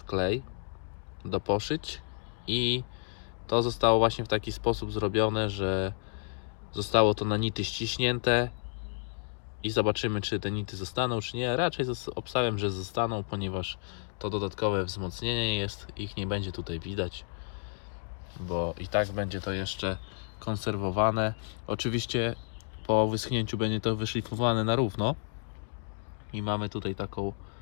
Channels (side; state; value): right; silent; digital silence